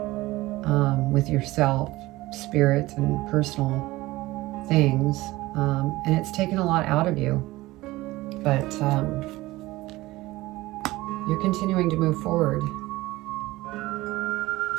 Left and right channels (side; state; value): left; quieter; 18.9 dB